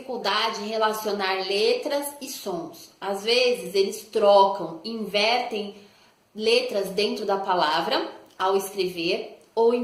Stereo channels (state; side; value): identical; both; correlation 1.00